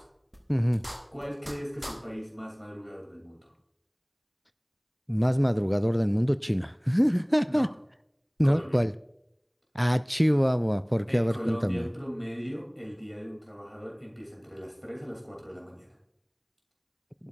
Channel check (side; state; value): both; identical; correlation 1.00